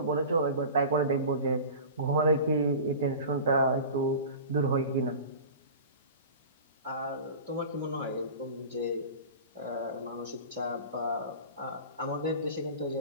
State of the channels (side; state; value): both; inverted; correlation -0.36